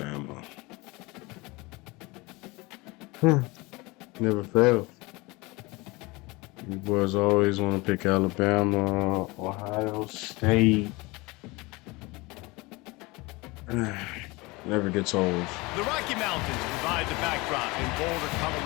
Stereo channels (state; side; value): quieter; right; 24.0 dB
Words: Never fails. You boys always want to pick Alabama, Ohio State. Never gets old. The Rocky Mountains provide the backdrop in Boulder,